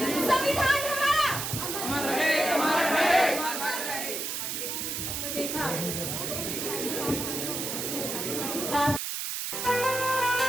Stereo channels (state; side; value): noise; right; hiss, 3 dB below the sound